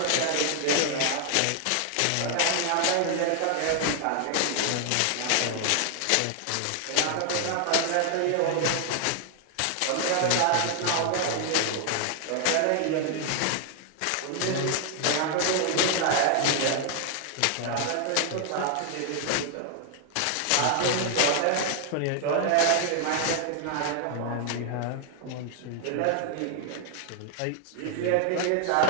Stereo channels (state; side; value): different; both; correlation 0.00